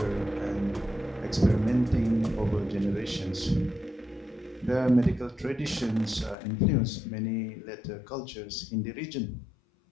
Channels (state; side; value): drops out; right; at 6.4 s